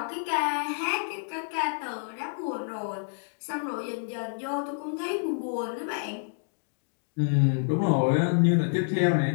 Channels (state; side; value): silent; right; digital silence